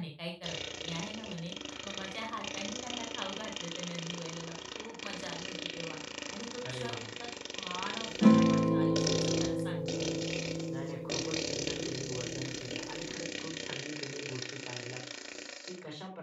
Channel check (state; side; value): identical; both; correlation 1.00